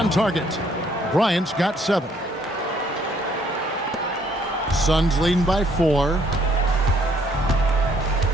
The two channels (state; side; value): normal; both; correlation 0.65